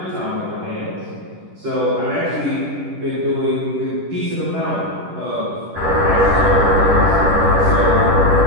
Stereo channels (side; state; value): left; late; 10 ms